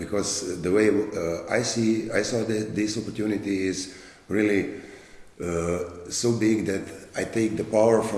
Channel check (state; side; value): identical; both; correlation 1.00